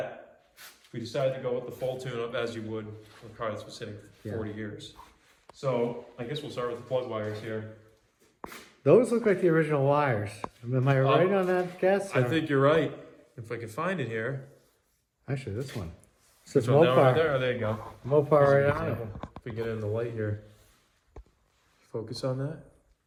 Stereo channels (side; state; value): both; identical; correlation 1.00